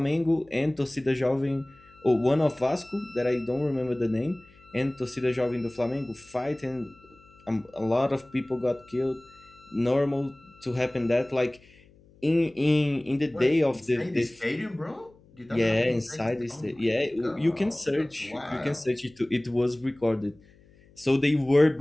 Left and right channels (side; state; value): left; noise; hum, 28 dB below the sound